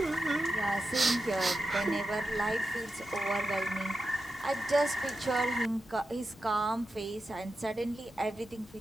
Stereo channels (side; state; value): both; normal; correlation 0.89